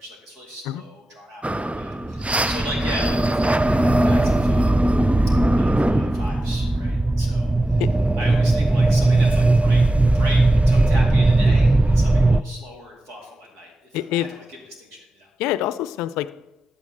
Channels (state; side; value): normal; both; correlation 0.92